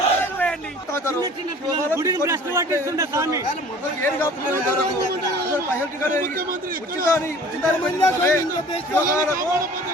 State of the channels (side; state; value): both; normal; correlation 0.47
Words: వేయండి. గుడిని భ్రష్టు పట్టిస్తుండే స్వామి.